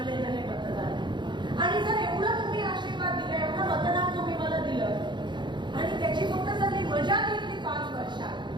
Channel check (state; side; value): late; left; 0.22 ms